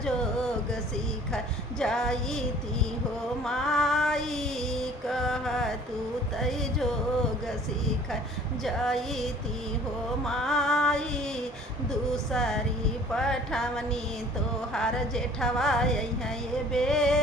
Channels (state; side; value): normal; both; correlation 0.51